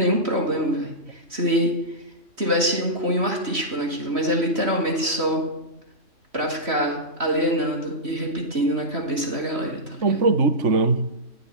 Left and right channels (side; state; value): left; late; 3.1 ms